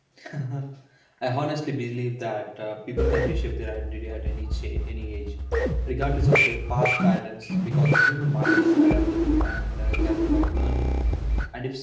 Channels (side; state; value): both; identical; correlation 1.00